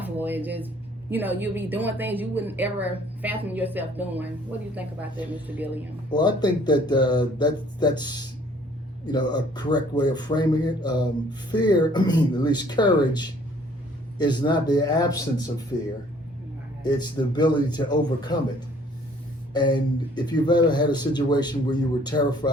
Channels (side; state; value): both; normal; correlation 0.58